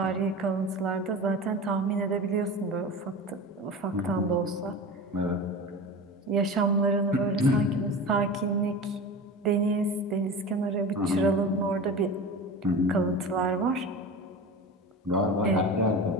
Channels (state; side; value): normal; both; correlation 0.31